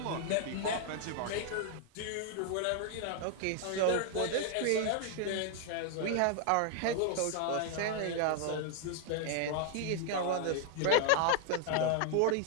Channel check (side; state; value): both; different; correlation 0.00